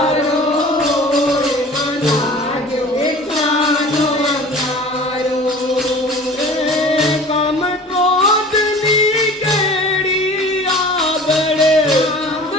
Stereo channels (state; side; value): normal; both; correlation 0.42